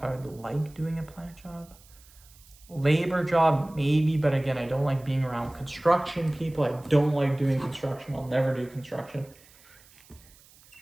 I would like doing a plant job. Labor job, maybe, but again, I don't like being around construction people. I don't like doing construction. I'll never do construction.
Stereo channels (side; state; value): right; noise; hiss, 26 dB below the sound